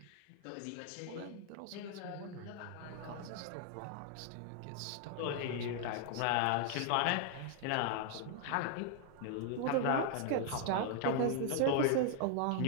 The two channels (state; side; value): different; both; correlation 0.00